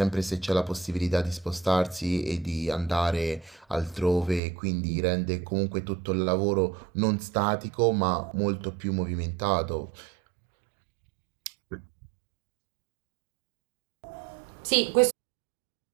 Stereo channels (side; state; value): left; drops out; at 4.4 s